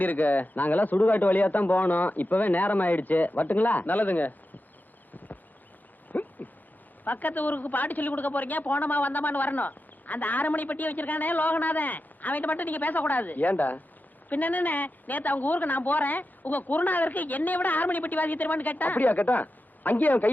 நாங்கெல்லாம் சுடுகாட்டு வழியா தான் போகணும். இப்பவே நேரம் ஆயிடுச்சு. வட்டுங்களா? நல்லதுங்க. பக்கத்து ஊருக்கு பாட்டு சொல்லி கொடுக்க போறீங்க, போனமா வந்தமான்னு வரணும். அந்த 6 மணி பெட்டியை வச்சிருக்கானே லோகநாதன், அவன்கிட்ட மட்டும் நீங்க பேசக்கூடாது. ஏண்டா? பின்ன என்ன, நேத்து அவங்க ஊருக்கு நான் போறேன், உங்க குருநாதருக்கு என்னை விட 6 மணி பெட்டி வாசி தருவான்னு கேட்டா. அப்படியா கேட்டா? அங்கேயே அவன்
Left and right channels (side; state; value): both; normal; correlation 0.90